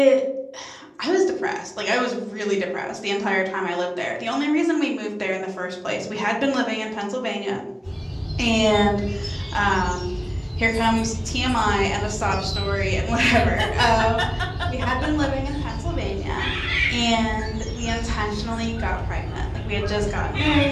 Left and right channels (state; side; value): identical; both; correlation 1.00